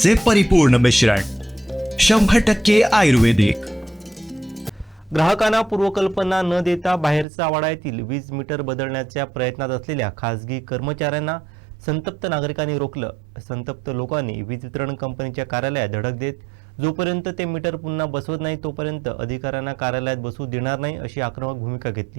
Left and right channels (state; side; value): drops out; left; at 7.2 s